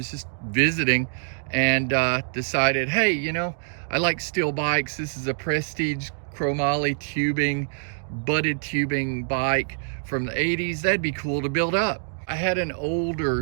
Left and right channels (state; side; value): silent; left; digital silence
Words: just visiting and decided, hey, you know, I like steel bikes. This is a Prestige chromoly tubing, butted tubing bike from the 80s. That'd be cool to build up. I had an